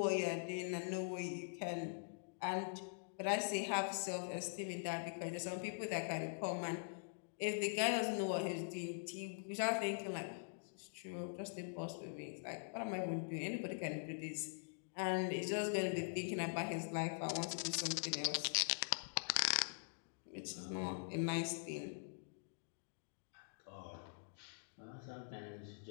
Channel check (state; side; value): silent; right; digital silence